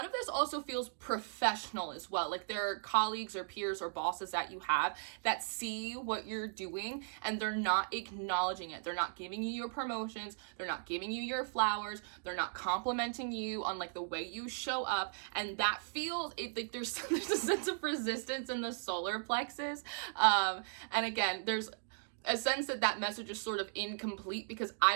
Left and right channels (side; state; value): left; silent; digital silence